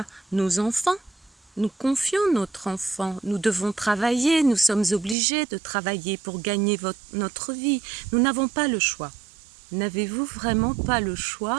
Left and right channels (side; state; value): left; drops out; at 5.2 s